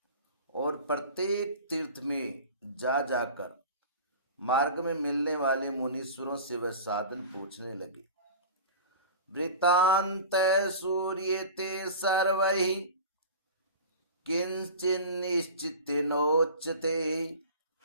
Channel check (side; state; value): both; inverted; correlation -0.36